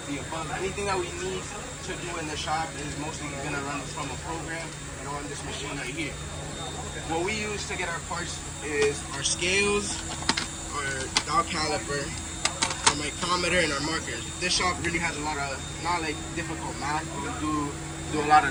the above. Anything that we need to do in the shop is mostly going to run from a program and on this machine right here. What we use to get our parts is our scales, our dial caliper, our micrometer, and our markers. This shop really has a lot of, not like difficult math, we do a lot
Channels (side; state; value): both; identical; correlation 1.00